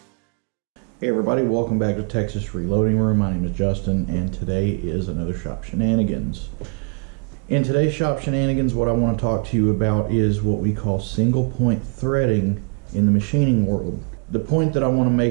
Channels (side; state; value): left; quieter; 38.9 dB